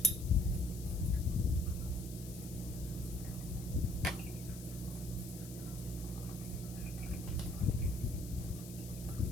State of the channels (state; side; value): noise; left; hiss, 14 dB below the sound